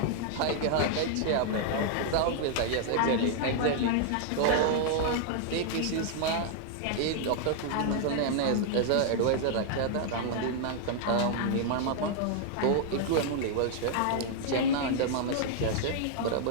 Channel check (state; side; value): different; both; correlation 0.00